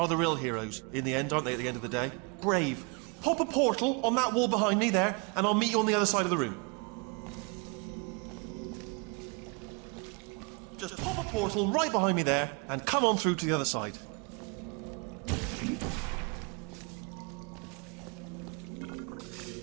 the real heroes in the end, aren't they, at the end of the day? Brave. Pop a portal on that wall behind me there, and I'll meet you on the other side of the room. Just pop a portal right behind me there, and come on through to the other side.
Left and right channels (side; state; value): left; quieter; 33.2 dB